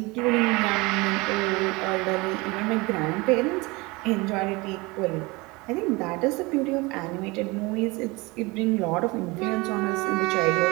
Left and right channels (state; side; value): quieter; left; 24.5 dB